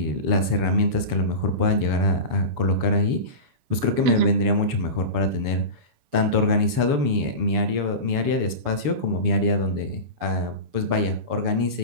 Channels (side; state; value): left; late; 7.0 ms